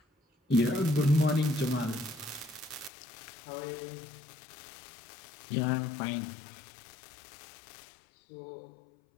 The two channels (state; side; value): drops out; right; at 2.9 s